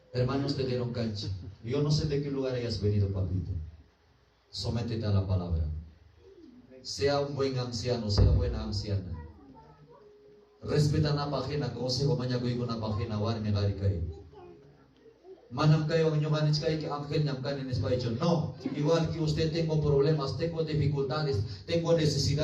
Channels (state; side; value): identical; both; correlation 1.00